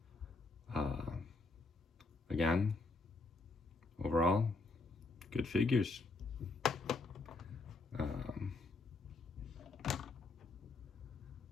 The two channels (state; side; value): quieter; right; 3.5 dB